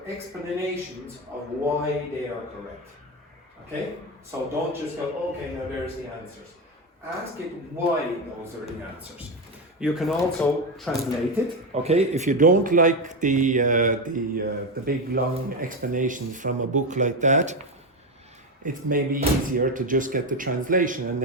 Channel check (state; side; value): normal; both; correlation 0.13